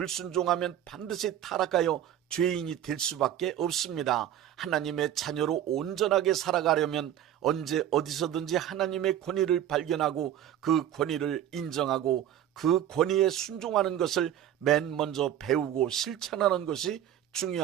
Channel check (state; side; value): quieter; left; 11.1 dB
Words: 반드시 타락하여 죄인이 될 수밖에 없습니다. 하나님의 자녀로 온전하게 살아가려면 언제 어디서든지 하나님의 권위를 발견하고 그 권위를 인정하고 그 권위에 순종하는 것을 맨 먼저 배우고 실천하는 것이